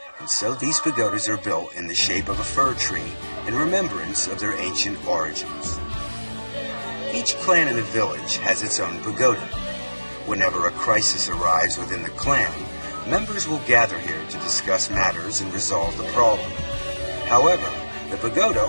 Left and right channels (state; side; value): inverted; both; correlation -1.00